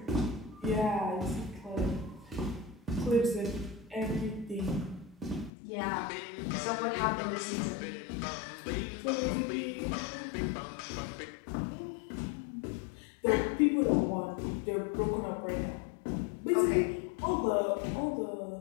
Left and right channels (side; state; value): right; drops out; at 5.5 s